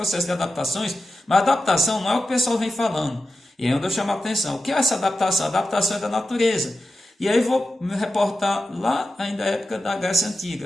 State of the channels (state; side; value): normal; both; correlation 0.92